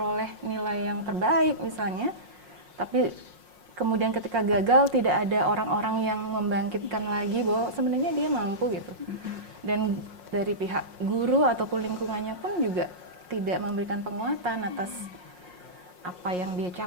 nilai yang terbaik misalnya, tapi kemudian ketika gagal tidak ada orang-orang yang membangkitkan lagi bahwa sebenarnya dia mampu gitu. Dan dari pihak guru ataupun lingkungannya pun juga tidak memberikan penguatan atas apa yang dia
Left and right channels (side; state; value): left; late; 5.6 ms